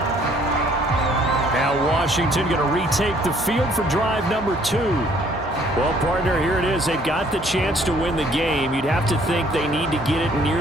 Washington going to retake the field for drive number 2. Well, partner, here it is. They've got the chance to win the game. You'd have to think they need to get it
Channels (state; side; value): normal; both; correlation 0.61